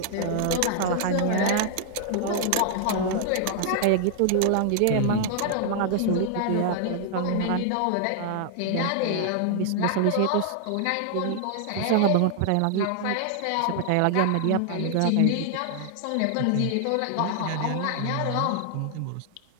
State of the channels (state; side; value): different; both; correlation 0.00